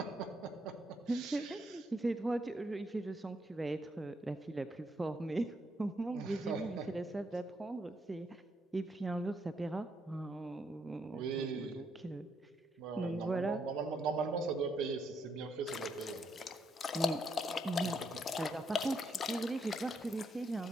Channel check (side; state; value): both; normal; correlation 0.76